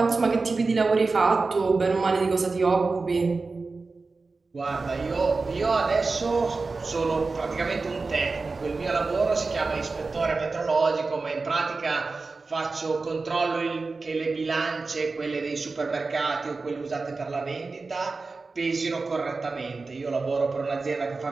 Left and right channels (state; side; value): quieter; left; 4.0 dB